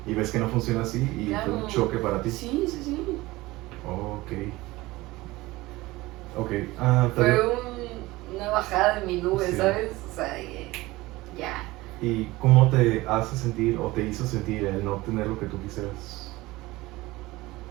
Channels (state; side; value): quieter; left; 19.7 dB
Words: y ves que no funciona así, y claro. fue un choque para ti. Sí. Fue una bajada de mi nube, ¿sabes? O sea, ya. ¿Y cómo te hace sentir o te hizo sentir el no obtener lo que tú quisieras?